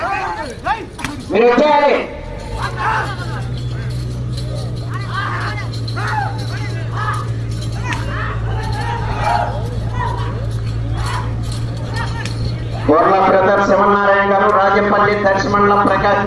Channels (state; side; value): identical; both; correlation 1.00